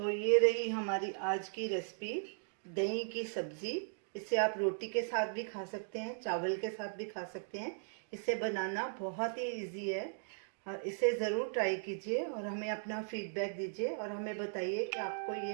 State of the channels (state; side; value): silent; left; digital silence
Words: ये रही हमारी आज की रेसिपी, दही की सब्जी। इसे आप रोटी के साथ भी खा सकते हैं, चावल के साथ भी खा सकते हैं। इसे बनाना बहुत ही इजी है। और इसे ज़रूर ट्राई कीजिए और हमें अपना फीडबैक दीजिए और हमें बताइए कि आपको ये